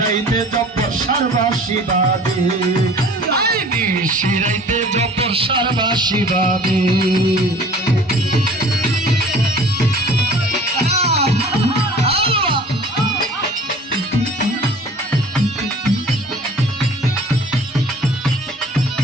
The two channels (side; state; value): both; normal; correlation 0.47